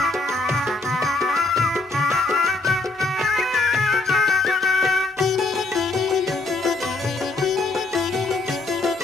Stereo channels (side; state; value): right; quieter; 3.3 dB